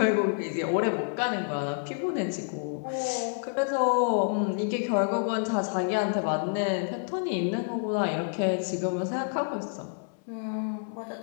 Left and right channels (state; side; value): silent; right; 59 dB below the other